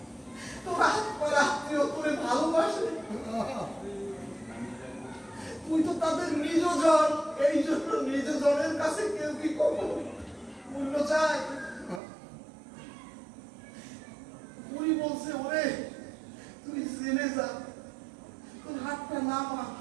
তুই তো তাদের নিজ জন, এই জন্য নিজ জনের কাছে কেউ কি কখনো মূল্য চায়? বুড়ি বলছে, ওরে তুই জেনে যা, তোর হাতটা নামা।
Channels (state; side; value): drops out; left; at 12.0 s